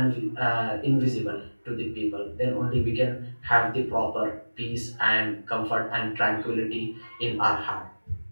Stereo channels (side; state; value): both; inverted; correlation -1.00